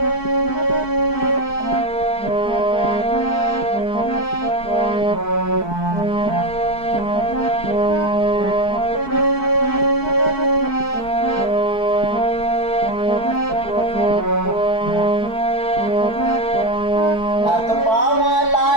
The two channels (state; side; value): late; right; 4.6 ms